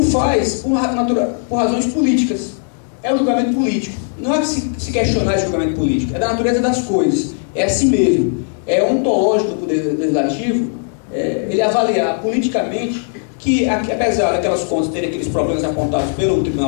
faz por razões políticas. É um julgamento político. Não é se questionar esse julgamento político, é da natureza das coisas, é assim mesmo. É ontológico do Poder Legislativo, ele avaliar politicamente que, apesar daquelas contas terem aqueles problemas apontados pelo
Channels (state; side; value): silent; right; 57 dB below the other